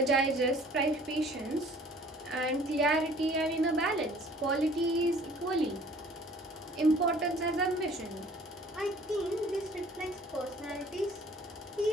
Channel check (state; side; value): normal; both; correlation 0.53